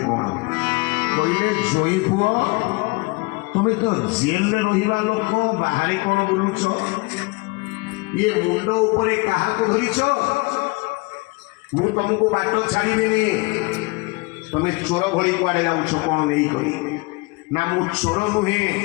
କଣ କହିଲେ? ଜୋଇଁ ପୁଅ ତମେ ତ ଜେଲରେ ରହିବା ଲୋକ, ବାହାରେ କଣ ବୁଲୁଛ? ଇଏ ମୁଣ୍ଡ ଉପରେ କାହାକୁ ଧରିଛ? ମୁଁ ତମକୁ ବାଟ ଛାଡ଼ିବିନି। ତମେ ଚୋର ଭଳି କୁଆଡ଼େ ଯାଉଛ କ'ଣ ନେଇକରି? ନା ମୁଁ ଚୋର ନୁହେଁ,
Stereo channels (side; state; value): right; quieter; 26.6 dB